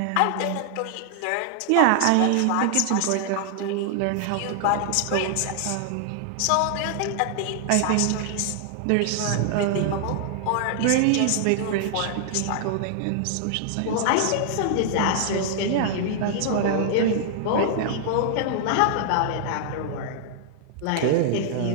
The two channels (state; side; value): different; both; correlation -0.01